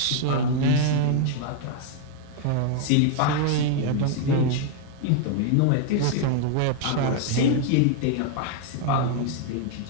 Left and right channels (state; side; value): different; both; correlation 0.00